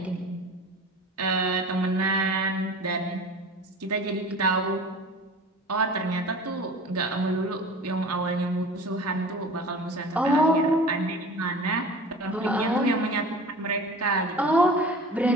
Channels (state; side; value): normal; both; correlation 0.39